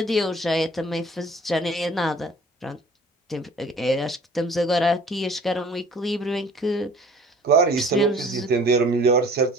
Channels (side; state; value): both; normal; correlation 0.49